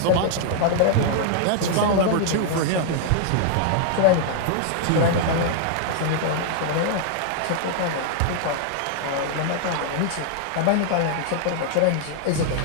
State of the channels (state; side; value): different; both; correlation -0.01